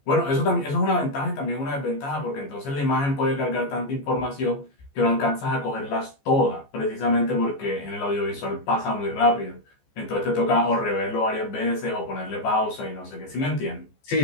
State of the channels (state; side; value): late; right; 14 ms